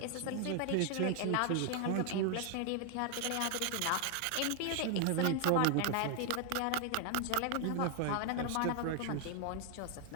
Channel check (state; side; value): different; both; correlation 0.00